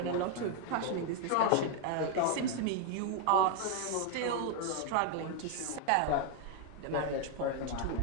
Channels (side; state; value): both; different; correlation 0.00